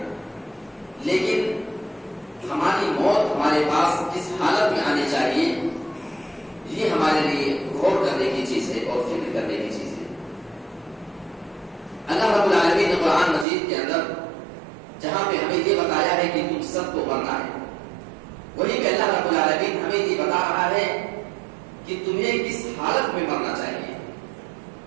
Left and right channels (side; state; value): left; drops out; at 13.5 s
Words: لیکن ہماری موت ہمارے پاس کس حالت میں آنی چاہیے یہ ہمارے لیے غور کرنے کی چیز ہے اور فکر کرنے کی چیز ہے۔ اللہ رب العالمین نے قرآن مجید کے اندر جہاں پہ ہمیں یہ بتایا ہے کہ تم سب کو مرنا ہے، وہیں پہ اللہ رب العالمین ہمیں یہ بتا رہا ہے کہ تمہیں کس حالت میں مرنا چاہیے۔